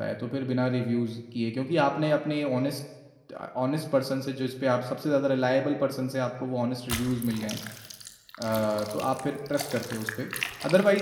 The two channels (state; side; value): identical; both; correlation 1.00